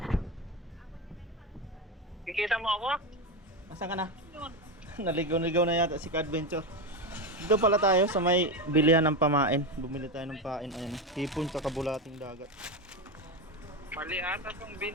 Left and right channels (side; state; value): both; normal; correlation 0.14